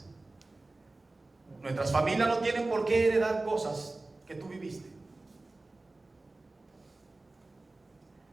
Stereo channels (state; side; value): quieter; left; 3.1 dB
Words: Nuestras familias no tienen por qué heredar cosas que tú viviste.